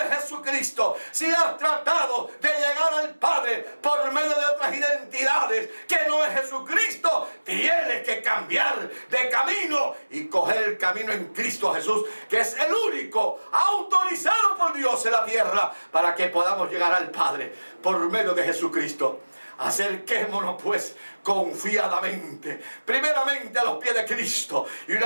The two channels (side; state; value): both; inverted; correlation -1.00